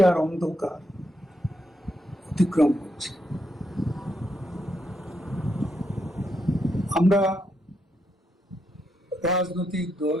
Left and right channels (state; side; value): normal; both; correlation 0.80